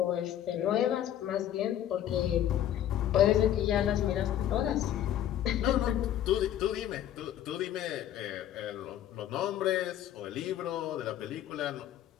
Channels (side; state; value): right; quieter; 11.3 dB